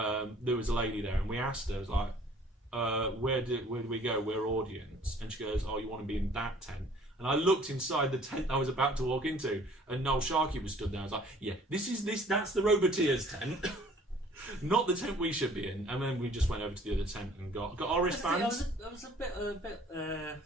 was a lady there, and we asked her, I was like, where do we go? We're audience. And she goes, oh, you want to be in that tent? And I looked inside the tent I was about to walk into, and Noel Sharkey was stood there. I was like, yeah, that's the Roboteers tent. Not the tent we should be in. And then we just went over to the other tent and got our wristbands. I was a bit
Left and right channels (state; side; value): normal; both; correlation 0.54